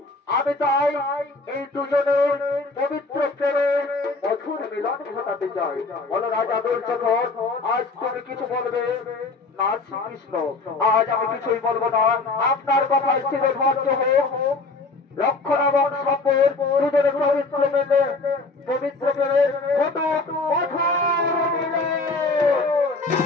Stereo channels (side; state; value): right; quieter; 3.6 dB